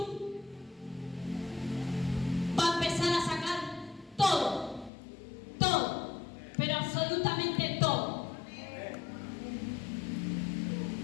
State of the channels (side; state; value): right; drops out; at 4.9 s